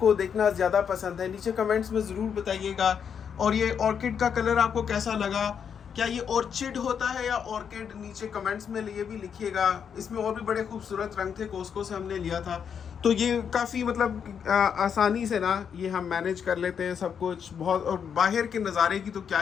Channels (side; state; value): right; quieter; 7.4 dB